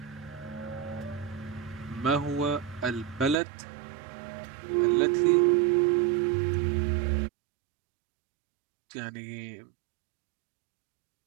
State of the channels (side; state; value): left; drops out; at 3.4 s